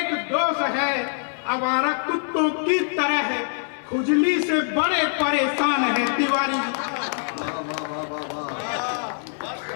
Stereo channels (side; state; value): right; silent; 63 dB below the other